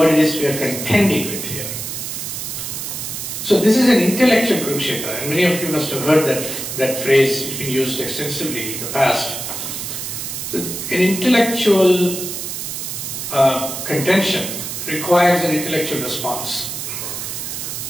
it is we are contending with here. So this is an intellectual Kurukshetra, and many of you must have heard that phrase. It's been used extensively in the past. So an intellectual contention requires an intellectual response.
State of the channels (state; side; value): noise; right; hiss, 6 dB below the sound